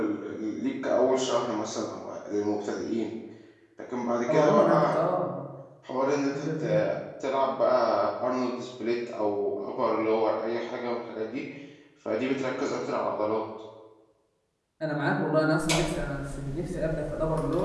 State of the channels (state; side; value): identical; both; correlation 1.00